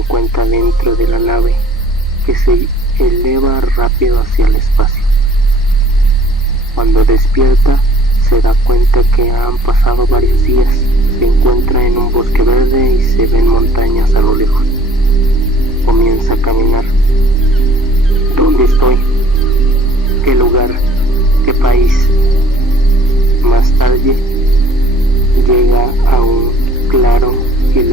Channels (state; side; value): noise; right; hum, 26 dB below the sound